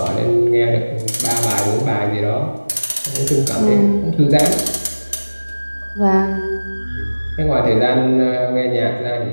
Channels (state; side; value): inverted; both; correlation -1.00